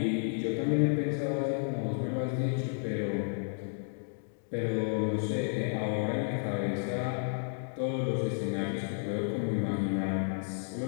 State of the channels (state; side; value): silent; right; digital silence